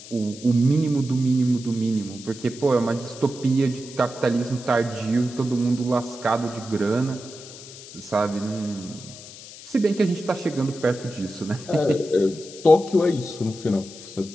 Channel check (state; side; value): noise; left; hiss, 16 dB below the sound